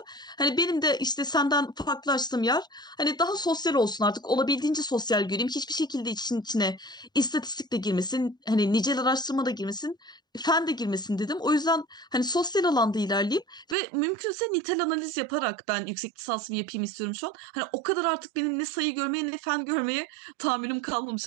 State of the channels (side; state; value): left; drops out; at 13.8 s